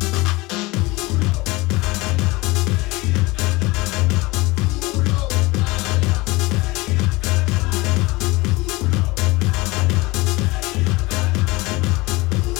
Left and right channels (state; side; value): quieter; right; 22.5 dB